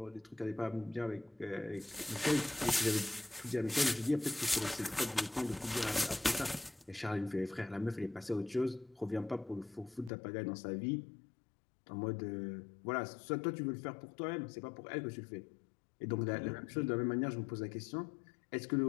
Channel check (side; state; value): right; drops out; at 10.1 s